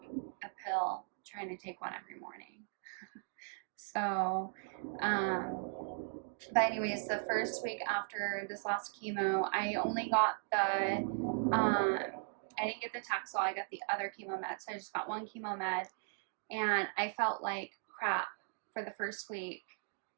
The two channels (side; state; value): left; silent; digital silence